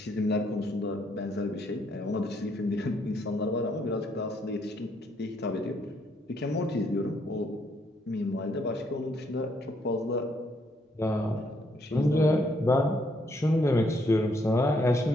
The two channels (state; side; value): normal; both; correlation 0.72